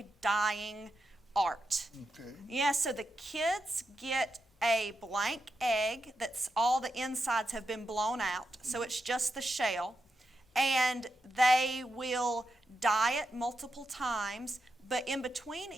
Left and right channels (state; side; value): normal; both; correlation 0.86